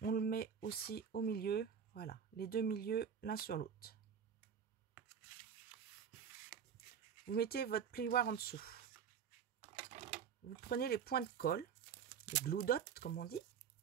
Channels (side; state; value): left; quieter; 7.3 dB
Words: on le met aussi au milieu. Voilà, les deux milieux l'un sur l'autre. Vous mettez votre plioir en dessous. Vous prenez les points de colle, les glue dots comme on dit.